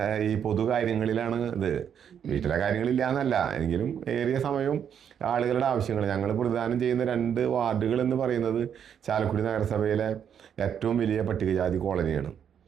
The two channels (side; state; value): left; quieter; 8.4 dB